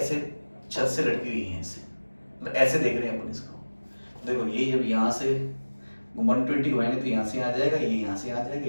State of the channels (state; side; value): inverted; both; correlation -1.00